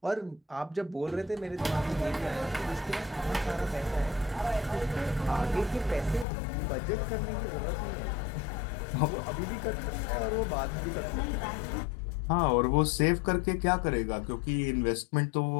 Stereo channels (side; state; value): right; drops out; at 6.2 s